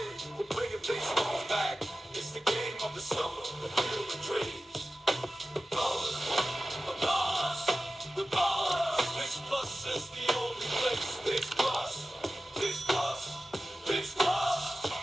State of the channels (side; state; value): both; normal; correlation 0.95